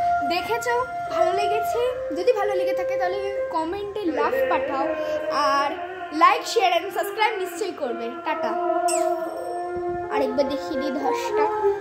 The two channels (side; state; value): both; identical; correlation 1.00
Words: দেখেছো, ভালো লেগেছে? যদি ভালো লেগে থাকে তাহলে কমেন্টে লাভ পাঠাও, আর লাইক শেয়ার এন্ড সাবস্ক্রাইব নিশ্চয়ই করবে। টাটা। আরেকবার দেখিয়ে দিই ধসটা।